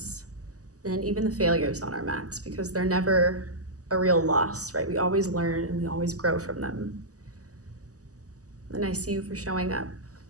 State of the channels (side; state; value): left; late; 0.66 ms